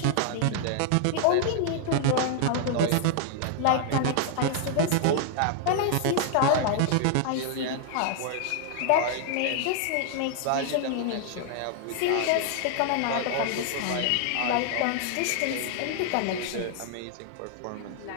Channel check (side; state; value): both; different; correlation 0.00